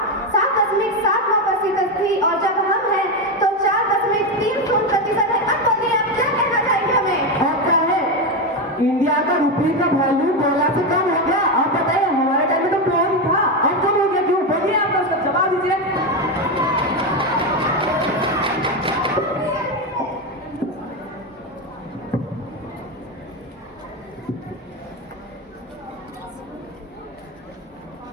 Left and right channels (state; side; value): normal; both; correlation 0.12